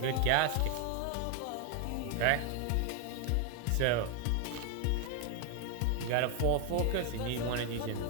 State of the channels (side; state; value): both; different; correlation 0.01